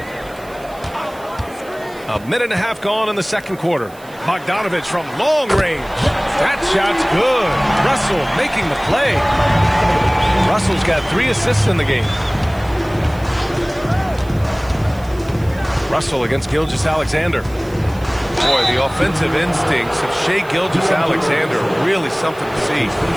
A minute and a half gone in the second quarter. Bogdanovich from long range. That shot's good. Russell making the play. Russell's got 3 assists in the game. Russell against Gilgeous-Alexander. Boy, the offensive instincts of Shai Gilgeous-Alexander are really something to see.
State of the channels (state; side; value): noise; right; hiss, 24 dB below the sound